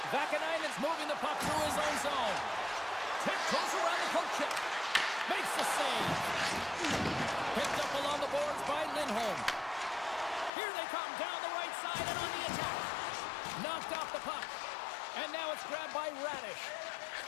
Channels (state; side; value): drops out; right; at 10.5 s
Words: Vakanainen's moving the puck through his own zone. Tiptoes around the poke check. Makes the save. Picked up along the boards by Lindholm. Here they come down the right side and on the attack. Knocked off the puck. And now it's grabbed by Radish.